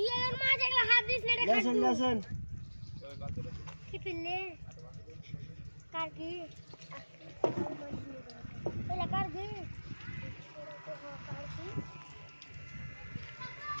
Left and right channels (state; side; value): inverted; both; correlation -1.00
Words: আর মাছ একলা হাত দিস না রে লেসেন কি পিলে কার কি এলা কার কি